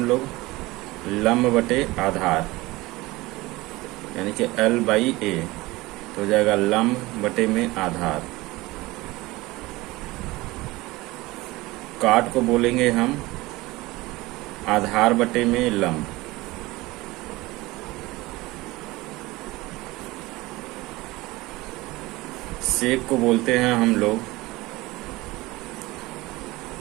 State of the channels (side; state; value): left; quieter; 20.6 dB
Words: लोग लंब बटे आधार, यानी कि L/A। तो हो जाएगा लंब बटे में आधार। काट को बोलेंगे हम आधार बटे में लंब। सेक को बोलते हैं हम लोग